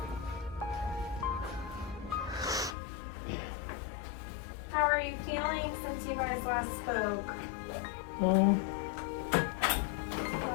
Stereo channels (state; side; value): drops out; right; at 2.8 s